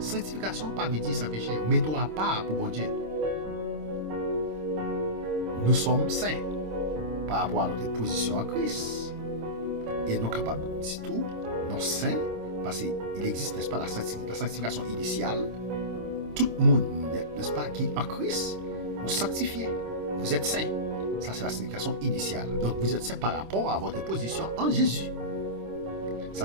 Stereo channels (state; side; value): late; left; 26 ms